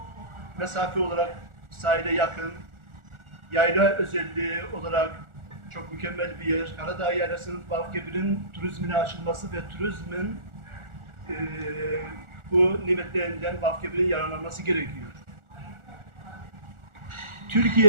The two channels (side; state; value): left; late; 1.4 ms